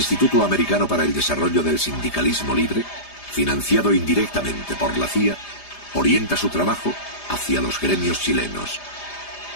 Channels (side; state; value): right; late; 4.9 ms